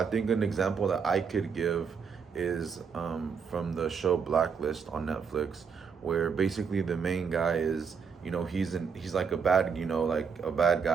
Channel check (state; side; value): quieter; left; 6.1 dB